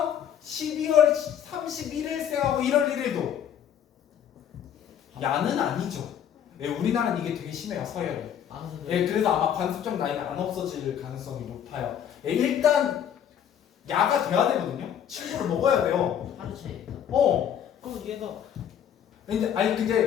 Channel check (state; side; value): quieter; right; 9.2 dB